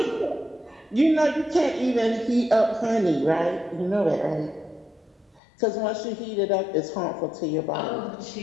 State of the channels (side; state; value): right; drops out; at 5.4 s